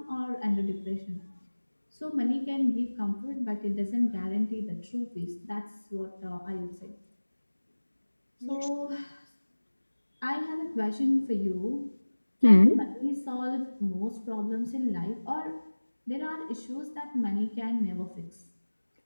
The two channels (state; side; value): inverted; both; correlation -1.00